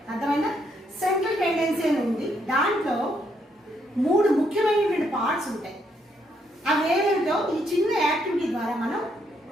అర్థమైనా? సెంట్రల్ టెండెన్సీ అని ఉంది. దాంట్లో 3 ముఖ్యమైనటువంటి పార్ట్స్ ఉంటాయి. అవి ఏమేమిటో ఈ చిన్న యాక్టివిటీ ద్వారా మనం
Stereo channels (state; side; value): normal; both; correlation 0.74